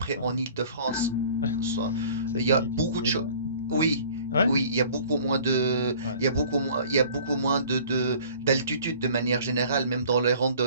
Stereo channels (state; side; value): inverted; both; correlation -0.50